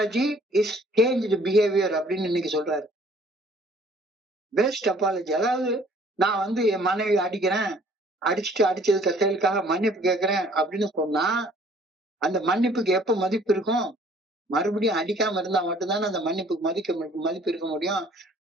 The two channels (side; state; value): both; normal; correlation 0.57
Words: is changed behavior அப்படின்னு இன்னைக்கு சொல்றாரு. பெஸ்ட் அப்பாலஜி, அதாவது நான் என் மனைவி அடிச்சதுக்கு செயலுக்காக மன்னிப்பு கேட்கிறேன் அப்படின்னு சொன்னா அந்த மன்னிப்புக்கு எப்ப மதிப்பு இருக்கும்? மறுபடியும் அடிக்காம இருந்தா மட்டும்தானே அந்த மன்னிப்புக்கு மதிப்பு இருக்க முடியும்.